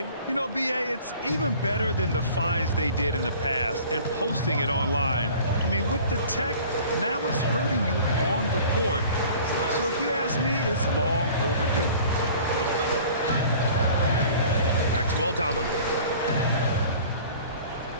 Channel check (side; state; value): both; inverted; correlation -0.47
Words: You know, BA, it's even better than the fines they did in the past and posting it online. I mean, with the tech, now it's hurting you on the court. So if you ask me, it's long overdue. Back to Aldama.